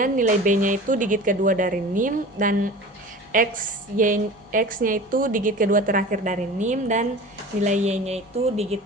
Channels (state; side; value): normal; both; correlation 0.38